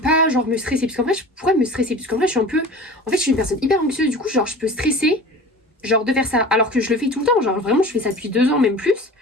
genre me stresser, parce qu'en vrai je pourrais me stresser, parce qu'en vrai je suis un peu, en fait je suis une personne hyper anxieuse, du coup genre je peux stresser, genre de faire ça, alors que je le fais tout le temps, genre vraiment je fais ça depuis 2 ans, même plus,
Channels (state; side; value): normal; both; correlation 0.38